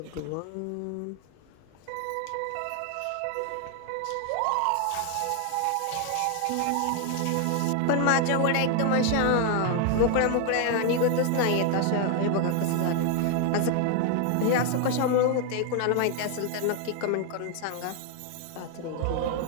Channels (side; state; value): both; different; correlation 0.00